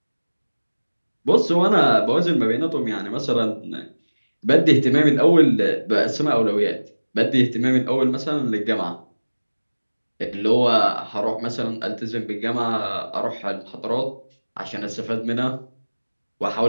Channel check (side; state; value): both; inverted; correlation -1.00